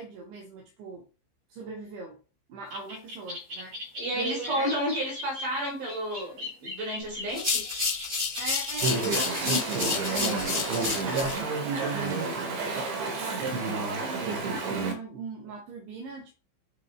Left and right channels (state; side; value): late; left; 15 ms